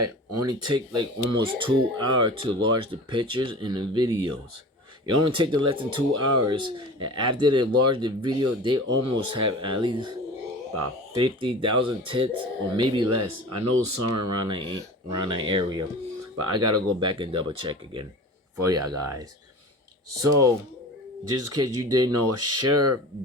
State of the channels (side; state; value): both; normal; correlation 0.37